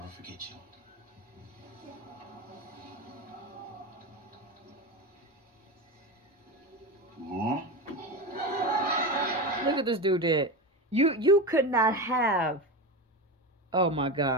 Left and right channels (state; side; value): normal; both; correlation 0.20